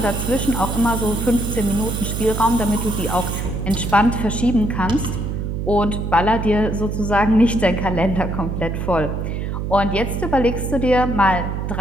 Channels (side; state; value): right; noise; hum, 3 dB below the sound